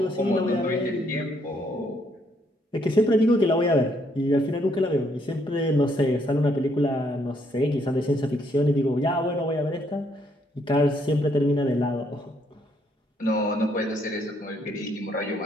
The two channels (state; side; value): normal; both; correlation 0.71